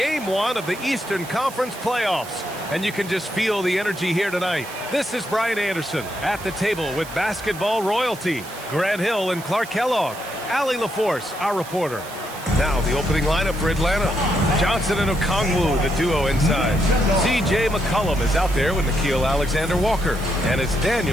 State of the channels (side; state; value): right; noise; hiss, 16 dB below the sound